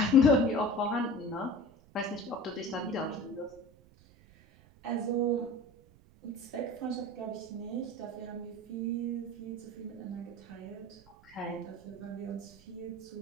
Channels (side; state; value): right; noise; rumble, 25 dB below the sound